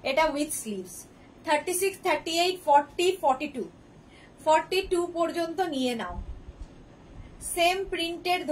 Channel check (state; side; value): identical; both; correlation 1.00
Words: এটা উইথ স্লিভস। 36, 38, 40, 42, 42 পর্যন্ত নিয়ে নাও। সেম প্রিন্টের